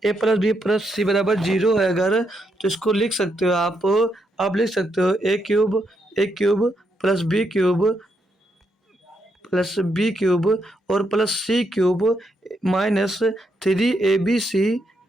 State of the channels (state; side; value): normal; both; correlation 0.79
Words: ए प्लस बी प्लस सी बराबर 0 है अगर, तो इसको लिख सकते हो आप लिख सकते हो A cube plus B cube और plus C cube minus 3 A B